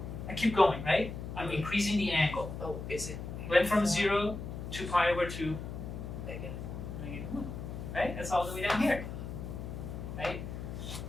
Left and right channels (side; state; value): left; noise; hum, 7 dB below the sound